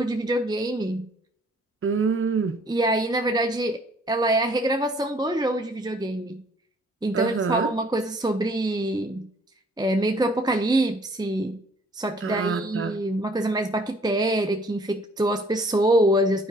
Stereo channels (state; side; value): normal; both; correlation 0.58